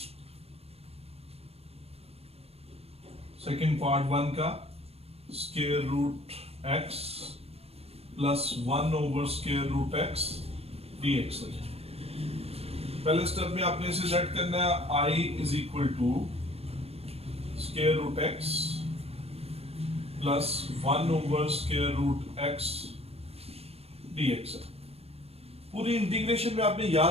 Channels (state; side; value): late; left; 0.29 ms